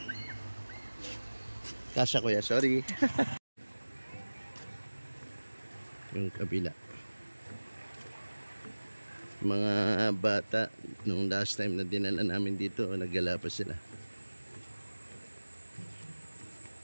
Kasya kuya, sorry. Yung kabila. Mga bata, nung last time na dinala namin dito, naggala pa sila.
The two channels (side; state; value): both; inverted; correlation -1.00